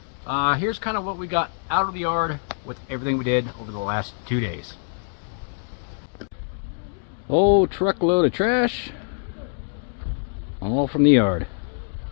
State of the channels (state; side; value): silent; right; 61 dB below the other